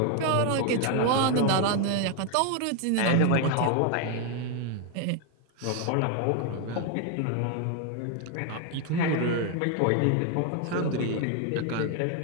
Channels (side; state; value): both; different; correlation 0.01